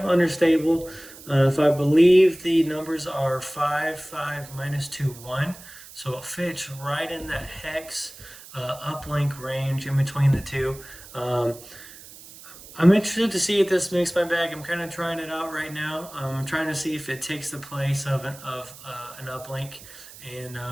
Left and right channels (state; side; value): noise; right; hiss, 18 dB below the sound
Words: unstable. If I believe the numbers are 5, 5, -2, 1. So it fits right in that hex uplink range in between the two. I'm interested to see if this makes my bag. I'm kind of trying it out right now. I'm trying to see if it takes the place of an uplink. And